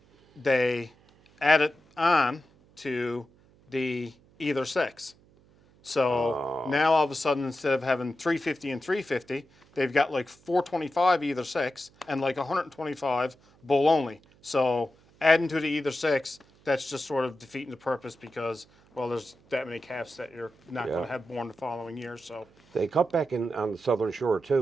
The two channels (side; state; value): right; noise; hum, 30 dB below the sound